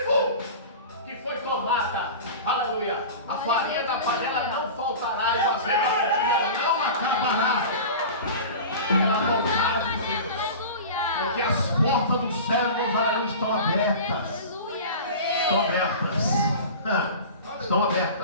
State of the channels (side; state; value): both; inverted; correlation -0.34